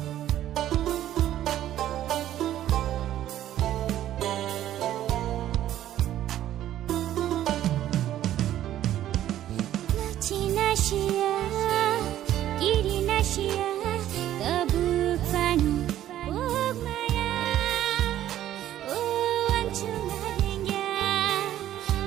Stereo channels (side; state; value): left; quieter; 12.4 dB